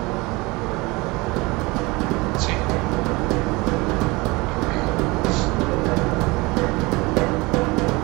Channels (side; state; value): left; quieter; 23.9 dB